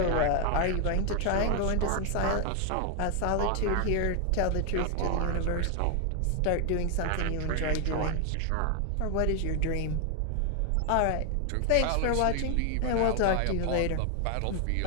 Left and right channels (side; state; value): both; different; correlation 0.00